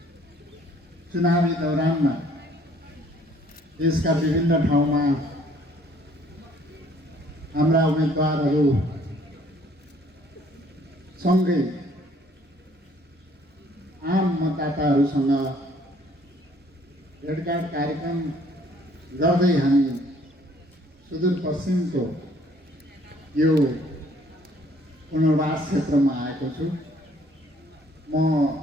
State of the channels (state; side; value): normal; both; correlation 0.60